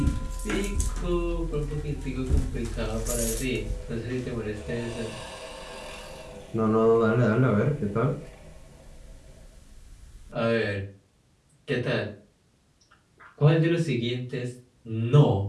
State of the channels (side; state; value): both; identical; correlation 1.00